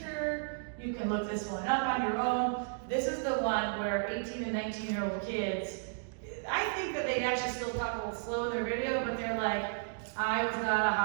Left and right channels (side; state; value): left; silent; digital silence